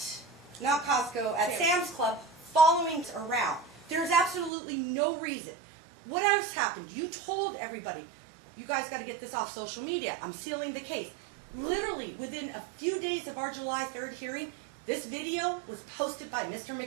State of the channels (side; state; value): left; drops out; at 4.5 s